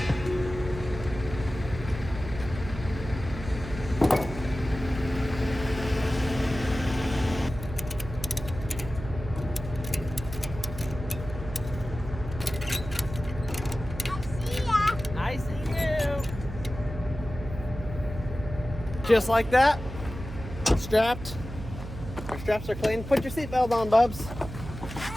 Just like that, strapped. Our straps are clean. Put your seatbelt on, Bubs.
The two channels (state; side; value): noise; right; hum, 10 dB below the sound